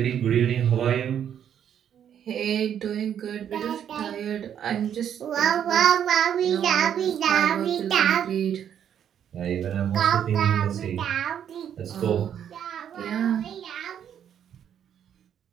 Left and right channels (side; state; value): left; quieter; 9.2 dB